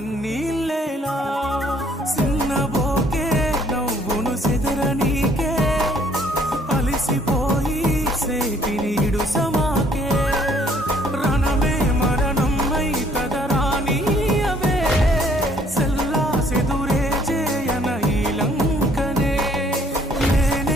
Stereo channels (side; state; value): both; normal; correlation 0.62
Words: సిన్నబోకే నవ్వును సెదరనీకే అలిసిపోయి సేటినీడు సమాకే రణమే మరణం అయి కదరానీయవే సెల్లా సెదురే చేయన ఈ లంకనే